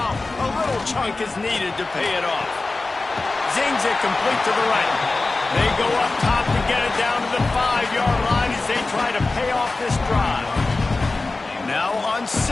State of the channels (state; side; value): quieter; right; 3.4 dB